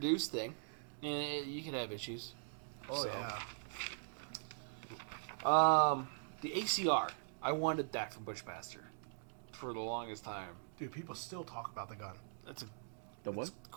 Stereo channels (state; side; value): silent; left; digital silence